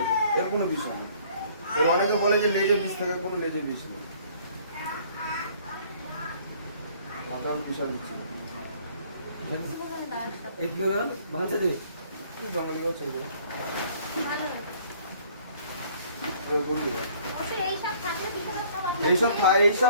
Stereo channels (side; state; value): both; inverted; correlation -0.57